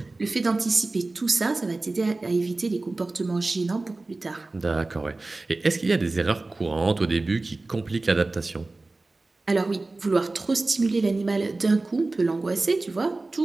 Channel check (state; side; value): quieter; left; 3.2 dB